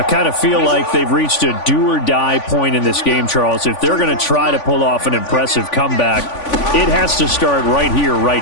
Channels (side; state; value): right; late; 3.5 ms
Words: kind of feel like they've reached a do-or-die point in this game, Charles. If they're going to try to pull off an impressive comeback, it has to start right here,